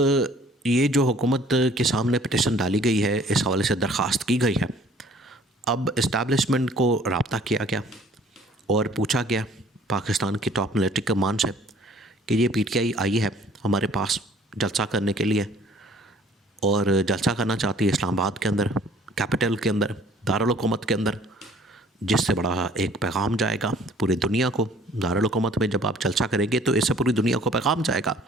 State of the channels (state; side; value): normal; both; correlation 0.55